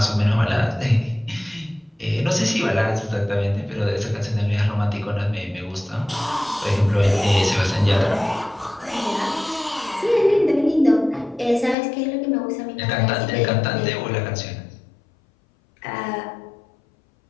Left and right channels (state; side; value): drops out; right; at 11.8 s